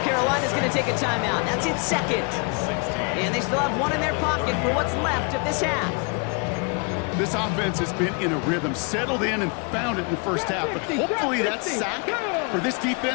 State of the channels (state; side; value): quieter; right; 34.3 dB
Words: Carolina's going to take a timeout. That's its 2nd. And they still have 1 in their pocket for what's left of this half. This offense has been in a rhythm, settled in and found it in the first half, but hopefully that sack for this